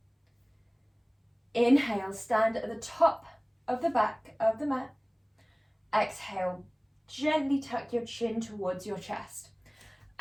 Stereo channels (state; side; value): identical; both; correlation 1.00